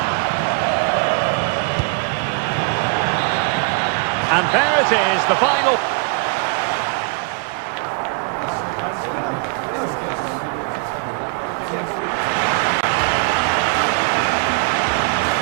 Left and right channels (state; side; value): quieter; left; 36.4 dB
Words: And there it is, the final.